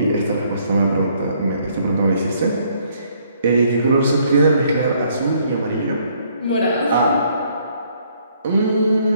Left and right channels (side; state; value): both; inverted; correlation -0.66